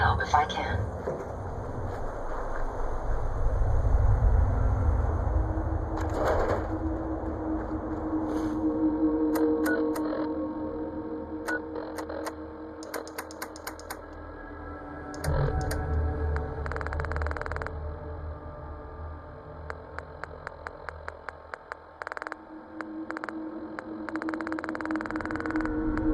if I can.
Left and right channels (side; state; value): both; identical; correlation 1.00